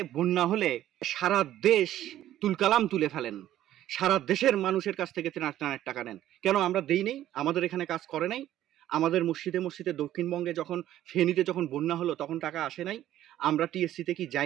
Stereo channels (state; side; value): quieter; left; 12.8 dB